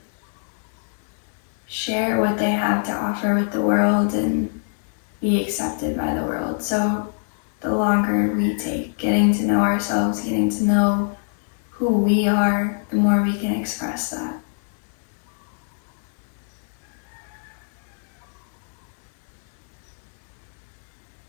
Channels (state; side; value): silent; right; digital silence